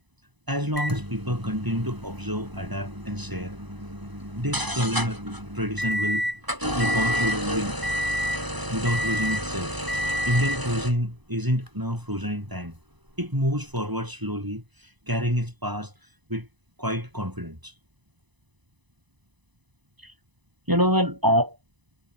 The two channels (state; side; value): late; left; 1.0 ms